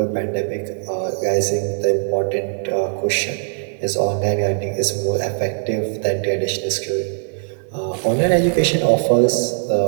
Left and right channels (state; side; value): silent; left; 64 dB below the other